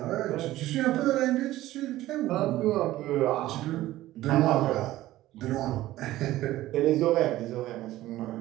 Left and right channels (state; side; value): quieter; left; 15.6 dB